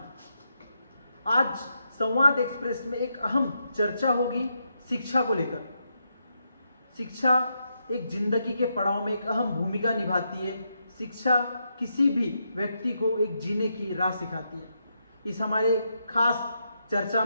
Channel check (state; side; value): inverted; both; correlation -0.82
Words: आज संवाद एक्सप्रेस में एक अहम चर्चा होगी शिक्षा को लेकर। शिक्षा एक जिंदगी के पड़ाव में एक अहम भूमिका निभाती है। शिक्षा किसी भी व्यक्ति को एक जीने की राह सिखाती है। इस हमारे खास चर्चा